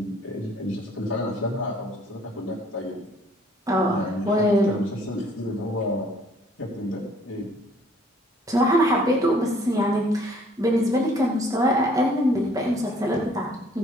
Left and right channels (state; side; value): normal; both; correlation 0.59